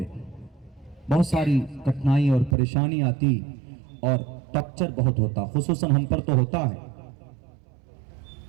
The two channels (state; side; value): drops out; left; at 2.6 s